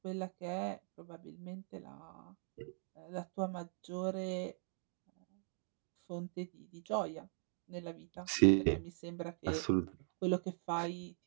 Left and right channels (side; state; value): left; silent; 50 dB below the other